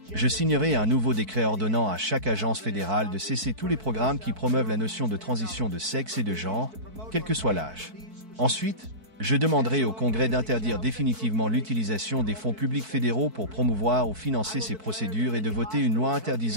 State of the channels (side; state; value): left; late; 4.6 ms